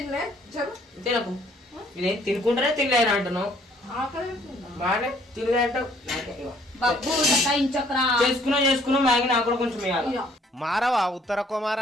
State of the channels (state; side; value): normal; both; correlation 0.62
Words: తినకు. ఇదేం తినుకుంటానే తినలేను అంటున్నావు. బాగానే తినలే అంటావు. చేసుకున్నా మ్యాగీ నాకు కూడా కొంచెం ఇవ్వాలి. మారవా ఉత్తర